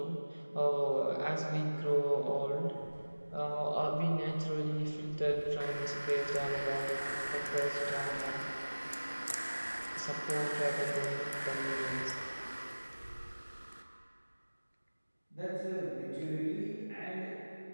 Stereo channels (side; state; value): both; inverted; correlation -1.00